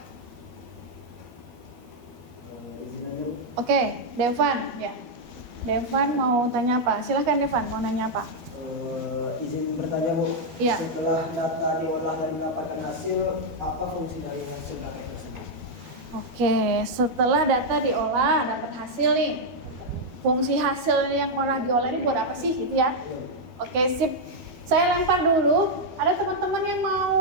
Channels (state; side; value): late; left; 12 ms